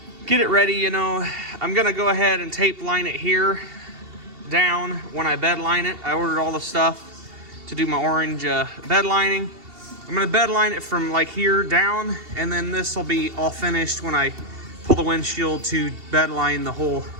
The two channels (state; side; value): late; left; 2.7 ms